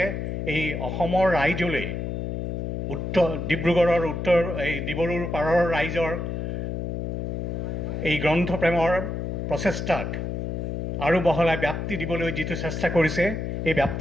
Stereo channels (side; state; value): left; noise; hum, 3 dB below the sound